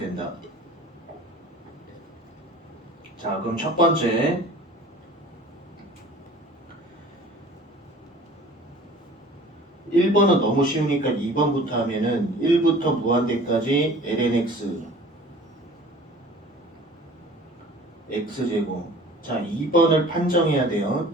자, 그럼 첫 번째 1번은 너무 쉬우니까 2번부터 하면은 1부터 무한대까지 lnx x제곱. 자, 2번을 판정해야 돼요.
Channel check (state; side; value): normal; both; correlation 0.46